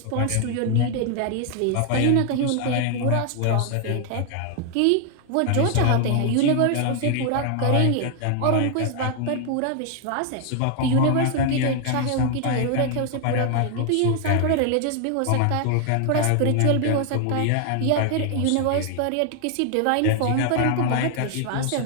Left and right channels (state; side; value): different; both; correlation 0.00